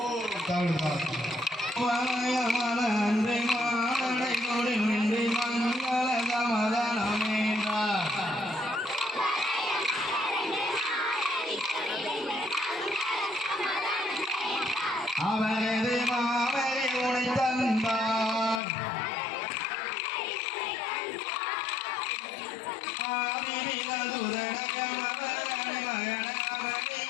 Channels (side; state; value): right; drops out; at 18.6 s